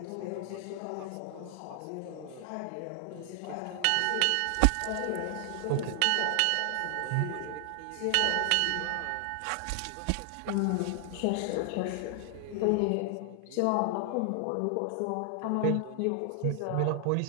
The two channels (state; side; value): different; both; correlation 0.00